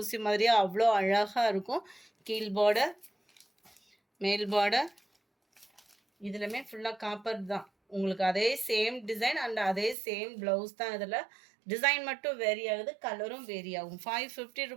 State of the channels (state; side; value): drops out; left; at 10.0 s